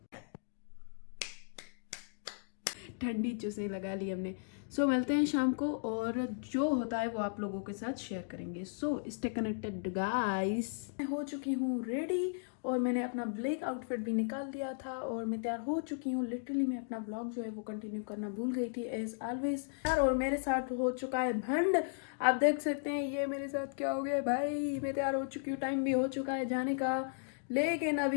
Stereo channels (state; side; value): silent; right; digital silence